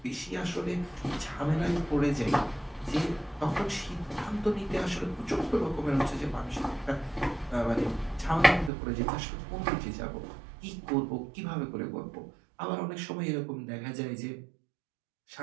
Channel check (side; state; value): left; drops out; at 8.7 s